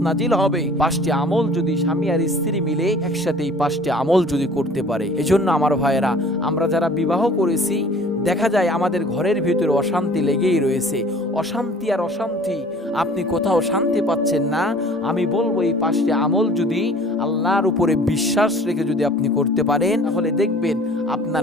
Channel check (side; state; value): both; normal; correlation 0.49